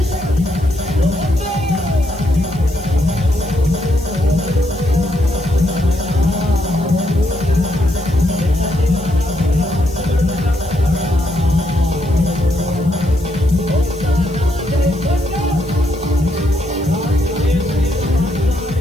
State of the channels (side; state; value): left; noise; hiss, 24 dB below the sound